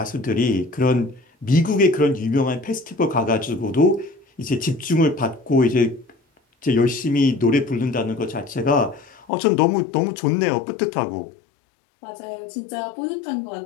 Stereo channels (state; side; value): drops out; right; at 9.2 s